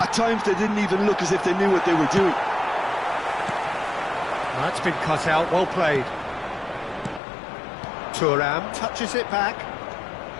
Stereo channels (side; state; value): right; drops out; at 7.2 s